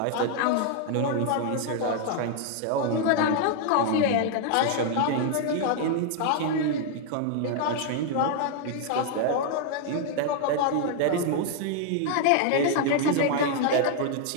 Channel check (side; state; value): both; different; correlation 0.00